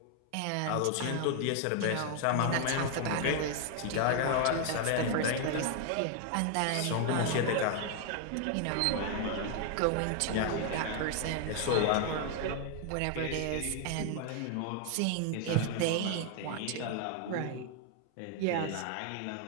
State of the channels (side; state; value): both; different; correlation 0.00